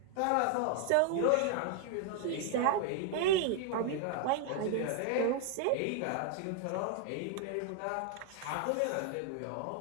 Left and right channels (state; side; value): different; both; correlation 0.00